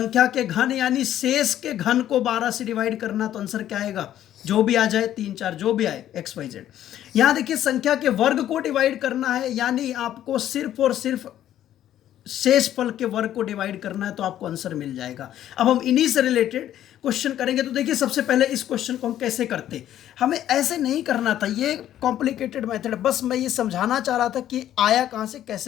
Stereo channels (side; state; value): right; quieter; 11.8 dB